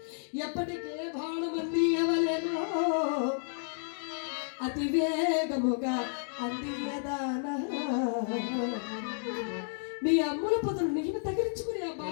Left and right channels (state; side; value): silent; right; digital silence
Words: ఎప్పటికే బాణమంది ఎవలేనో అతి వేగముగా అందియదానా. మీ అమ్ముల పొదలు నేను తగిలించుకుని ఆ